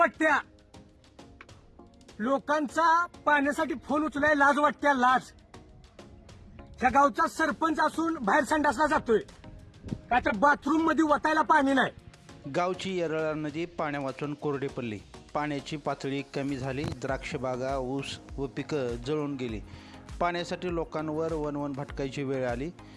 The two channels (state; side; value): identical; both; correlation 1.00